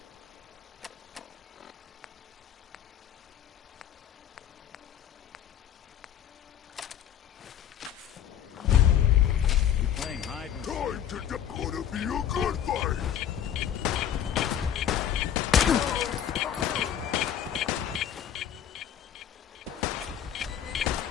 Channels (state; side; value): quieter; right; 9.8 dB